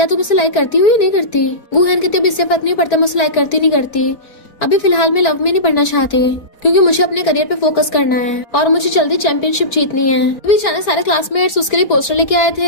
तुम उसे लाइक करती हो या नहीं करती? गुहन कहती है इससे फर्क नहीं पड़ता मैं उसे लाइक करती नहीं करती, अभी फिलहाल मैं लव में नहीं पढ़ना चाहती क्योंकि मुझे अपने करियर पे फोकस करना है और मुझे जल्दी चैंपियनशिप जीतनी है। अभी अचानक सारे क्लासमेट्स उसके लिए पोस्टर लेके आए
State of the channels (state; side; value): late; right; 4.3 ms